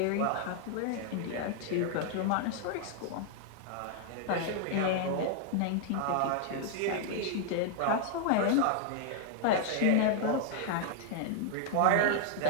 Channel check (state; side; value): different; both; correlation -0.01